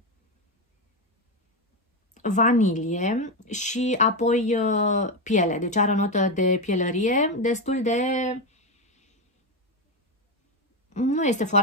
vanilie și apoi piele. Deci are o notă de pielărie destul de... Nu este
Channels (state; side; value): normal; both; correlation 0.11